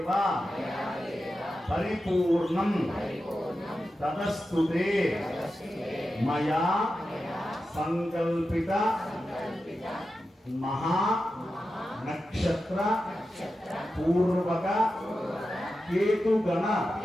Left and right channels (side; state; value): both; normal; correlation 0.91